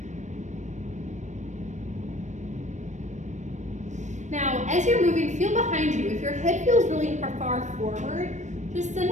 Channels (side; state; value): left; late; 0.34 ms